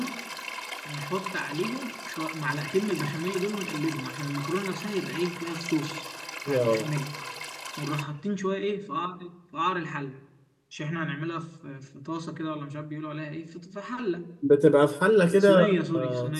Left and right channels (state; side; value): identical; both; correlation 1.00